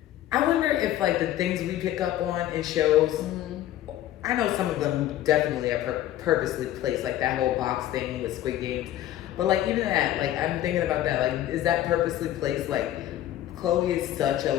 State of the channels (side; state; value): right; quieter; 13.0 dB